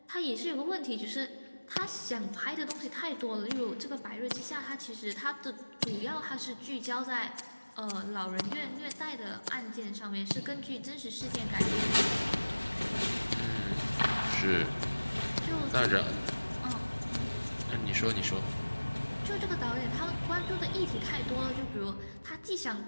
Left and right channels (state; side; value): inverted; both; correlation -1.00